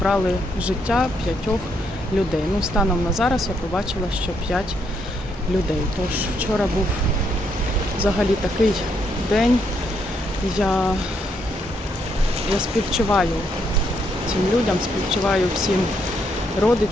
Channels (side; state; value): both; normal; correlation 0.75